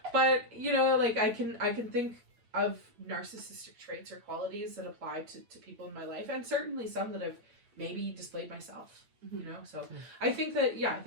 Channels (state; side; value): late; left; 8.8 ms